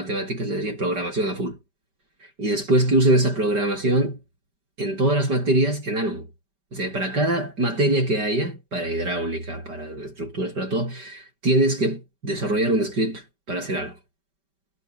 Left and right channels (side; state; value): left; late; 5.1 ms